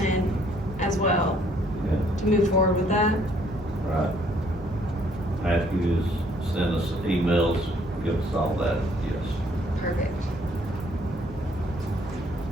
as well, Yeah. to move forward with that. Right. Matthews sent us emails, give us all that, yes.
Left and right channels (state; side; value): normal; both; correlation 0.64